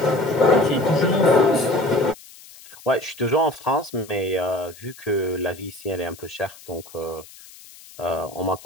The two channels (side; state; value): left; noise; hiss, 21 dB below the sound